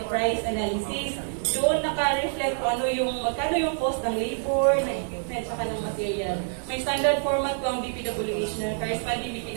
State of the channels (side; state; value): left; silent; digital silence